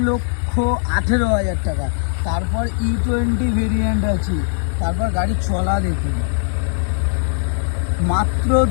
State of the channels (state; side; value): silent; right; digital silence